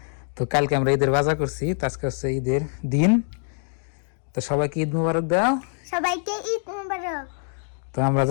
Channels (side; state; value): right; silent; digital silence